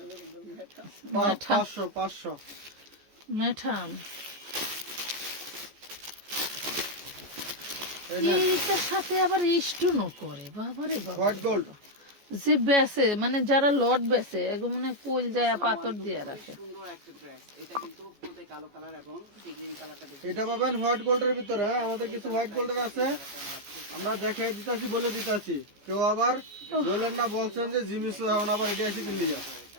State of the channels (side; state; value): left; late; 14 ms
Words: মেঠা 500 মেঠাম এই নেন। এইটার সাথে আবার স্টোনও করে, বাবারে বাবা। হট গোল্ড যে বেসে, মানে যারা লট বেসে, এগুলো মানে কোল যায় পাথর দিয়ে রাখে। সুন্দর একটা ড্রেস। এটা কিন্তু পুরোতে কালো কালার এবং গ্রিন কালারটা বেশি। এটা পাবেন হোয়াইট গোল্ডের ভিতরে। হ্যাঁ, আমাদের কিছু হোয়াইট গোল্ডের আছে, আমরা দেখে দিতেছি, বলে দিতেছি। কেউ আবার বলেন না, বলছেন যে জিমিস এখন আবার এটা এসে কিনে যা,